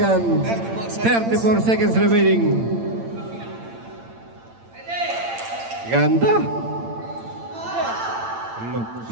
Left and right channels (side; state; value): left; late; 8.8 ms